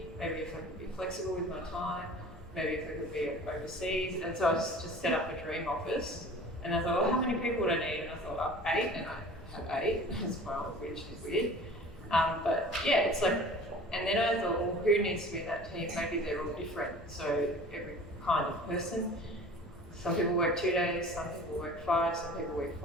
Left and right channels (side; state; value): both; normal; correlation 0.43